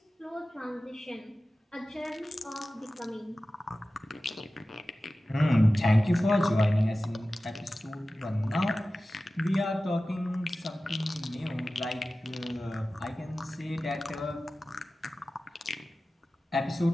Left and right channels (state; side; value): normal; both; correlation 0.96